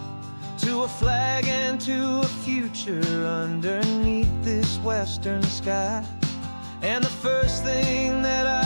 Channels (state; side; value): inverted; both; correlation -1.00